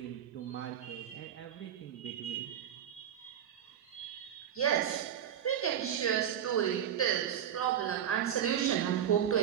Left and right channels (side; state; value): left; quieter; 9.5 dB